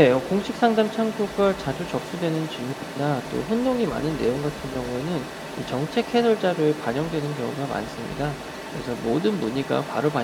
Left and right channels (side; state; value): both; identical; correlation 1.00